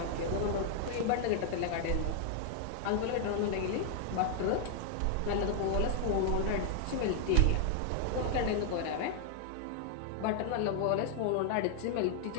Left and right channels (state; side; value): different; both; correlation 0.00